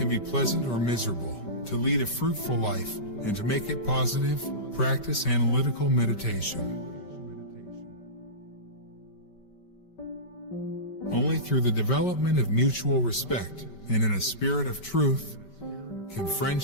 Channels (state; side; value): late; right; 5.2 ms